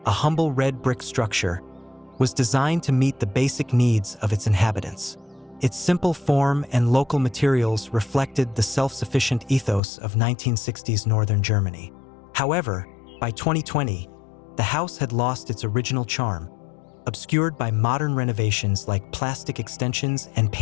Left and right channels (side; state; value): right; drops out; at 9.8 s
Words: a humble red brick structure, was designed to meet the basic needs of its inhabitants. Its simple form and local materials reflected the self-sufficient ethos of 1960s northern Germany. However, by 2020, the house had lost its original charm, obscured by modern renovations like plastic extensions and